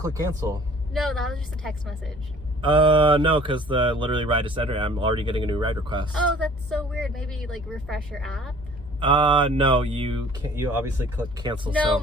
cancel? No, that was just a text message. No, because the literally ride is ended. I'm already getting a new ride request. Oh, that's so weird. Maybe like refresh your app? No, you can't. You obviously click cancel. No, so.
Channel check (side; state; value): both; normal; correlation 0.51